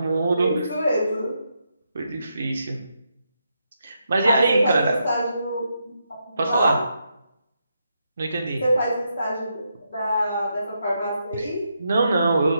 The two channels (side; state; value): both; inverted; correlation -0.82